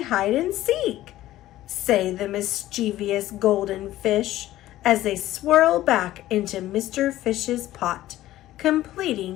hide and seek, say the mischievous golden fish as they swirl back into Mr. Fish's pot,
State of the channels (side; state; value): right; quieter; 14.8 dB